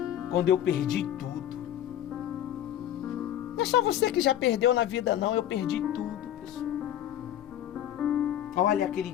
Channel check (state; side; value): quieter; right; 11.4 dB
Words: quando eu perdi tudo. Não é só você que já perdeu na vida, não. Eu perdi tudo, pessoal. Olha, aquele